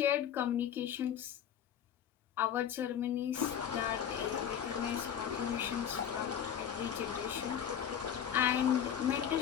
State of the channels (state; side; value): quieter; right; 9.1 dB